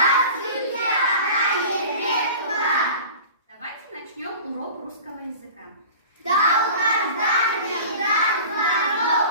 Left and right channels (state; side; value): inverted; both; correlation -0.39